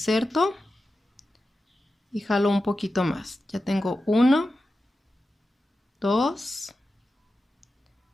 y jalo un poquito más. Ya tengo 1, 2,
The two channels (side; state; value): both; normal; correlation 0.92